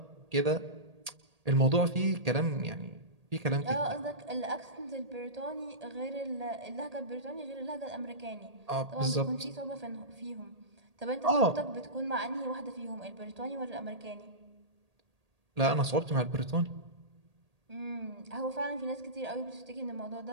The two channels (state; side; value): late; left; 1.8 ms